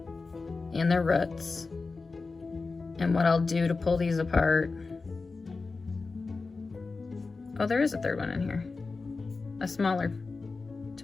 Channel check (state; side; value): quieter; right; 4.0 dB